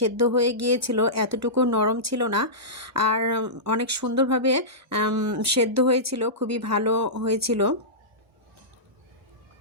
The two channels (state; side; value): normal; both; correlation -0.17